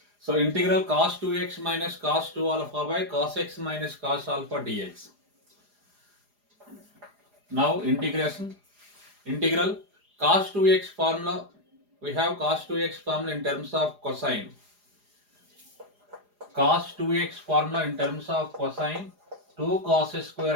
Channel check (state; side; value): late; left; 4.9 ms